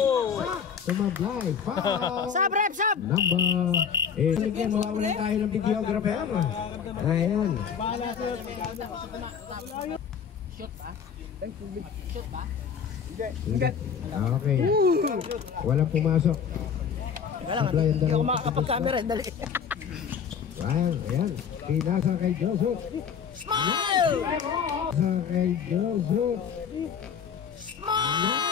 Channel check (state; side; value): quieter; right; 7.1 dB